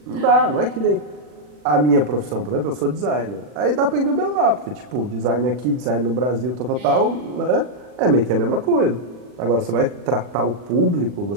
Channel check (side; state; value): left; late; 40 ms